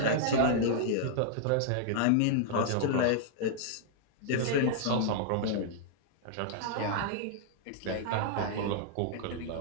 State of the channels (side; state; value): both; different; correlation -0.01